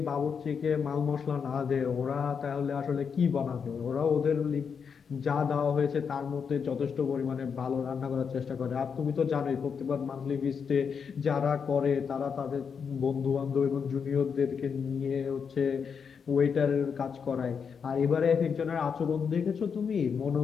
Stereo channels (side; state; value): right; quieter; 6.4 dB